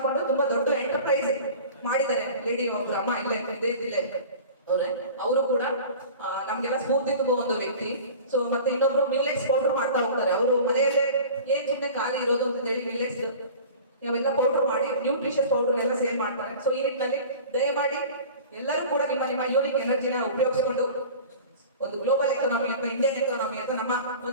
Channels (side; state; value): both; inverted; correlation -0.39